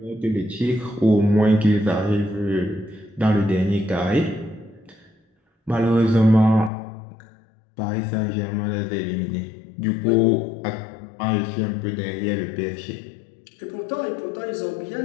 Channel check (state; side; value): drops out; right; at 6.7 s